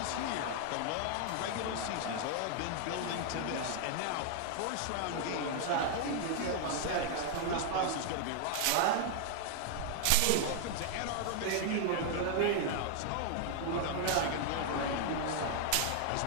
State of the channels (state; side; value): different; both; correlation 0.00